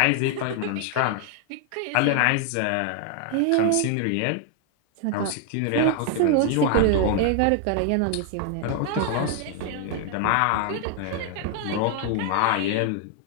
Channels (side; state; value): both; different; correlation 0.00